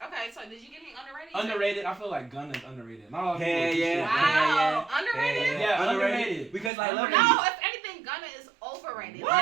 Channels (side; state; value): left; drops out; at 6.7 s